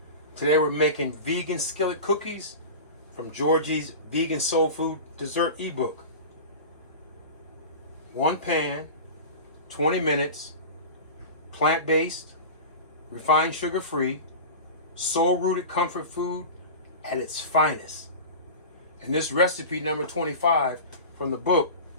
Today we're making vegan skillet cookies from Georgie's Vegan Soul Food Dessert ebook. One pan, 20 minutes, plant-based, refined sugar-free, soul-rooted comfort food at its finest. And this recipe number 25 from the book,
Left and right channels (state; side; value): inverted; both; correlation -0.31